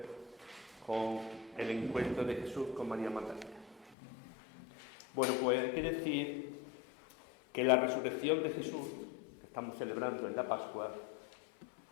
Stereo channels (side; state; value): right; drops out; at 4.0 s